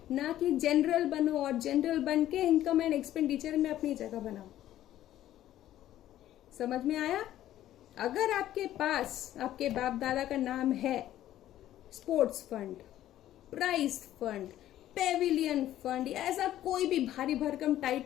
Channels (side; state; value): right; quieter; 13.0 dB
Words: ना कि जनरल बनो और जनरल बन के इनकम एंड एक्सपेंडिचर में अपनी जगह बनाओ। समझ में आया? अगर आपके पास आपके बाप दादा का नाम है sports fund, prize fund, pavilion fund, ऐसा कोई भी भारी भरकम